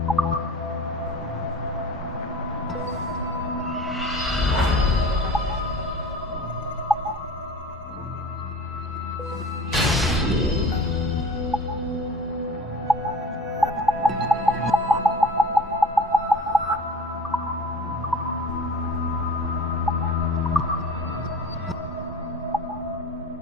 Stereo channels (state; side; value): normal; both; correlation 0.41